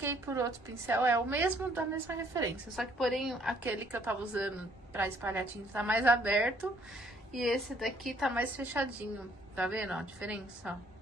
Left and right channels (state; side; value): normal; both; correlation 0.64